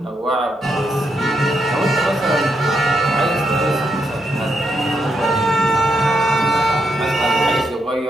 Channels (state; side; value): normal; both; correlation 0.81